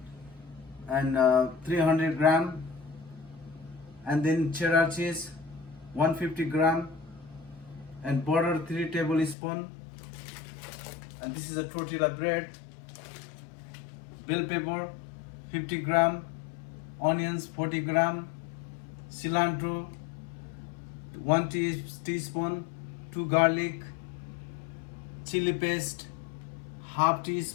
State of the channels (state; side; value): drops out; right; at 9.3 s